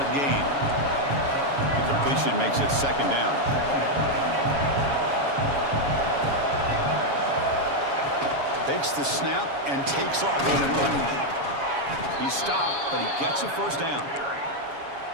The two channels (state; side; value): late; left; 7.2 ms